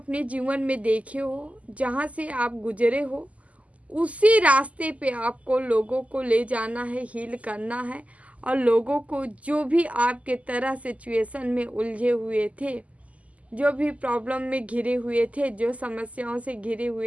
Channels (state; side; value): late; left; 0.069 ms